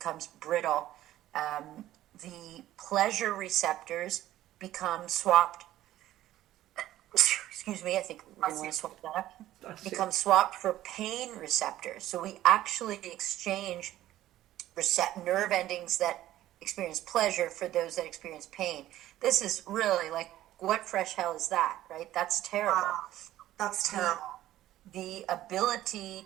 brittle. The pleasure receptors become swapped. Excuse me, I think we want to swap that up. Become swapped for pain receptors. So we actually exchange nerve endings that experience pleasure for those that experience pain. This is really like, what fresh hell is that, right? That's terrible. Wow. That's terrible. The ability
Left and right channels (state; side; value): quieter; left; 14.0 dB